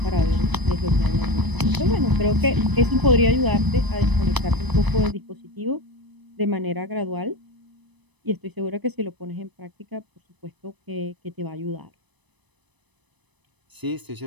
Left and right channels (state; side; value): late; left; 1.0 ms